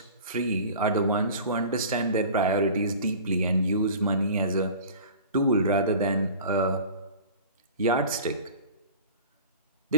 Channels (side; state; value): both; inverted; correlation -0.41